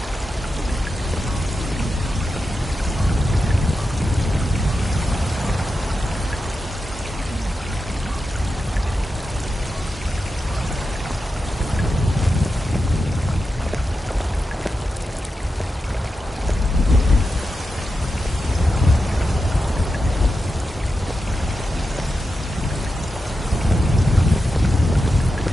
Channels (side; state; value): both; normal; correlation 0.89